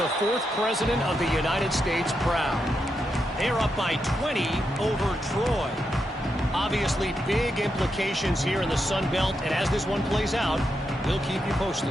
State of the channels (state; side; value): normal; both; correlation 0.84